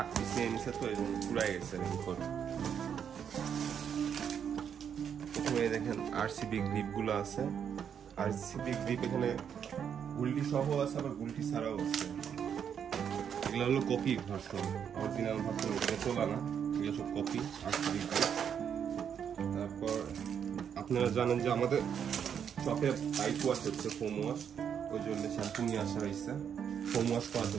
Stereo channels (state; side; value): quieter; left; 8.0 dB